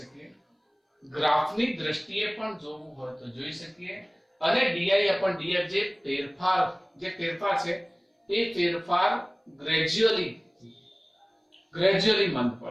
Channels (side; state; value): both; identical; correlation 1.00